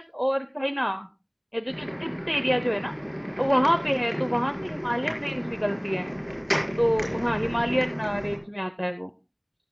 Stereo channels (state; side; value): identical; both; correlation 1.00